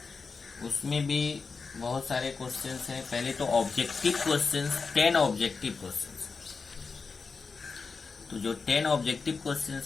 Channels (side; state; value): right; quieter; 4.7 dB